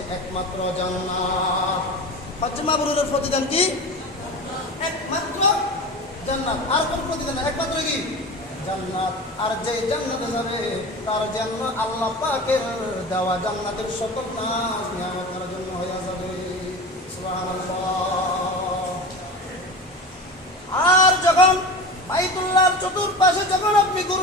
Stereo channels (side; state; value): both; normal; correlation 0.30